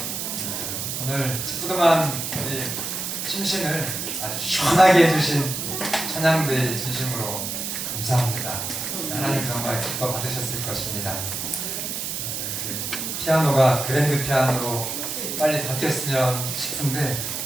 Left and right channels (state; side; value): noise; right; hiss, 4 dB below the sound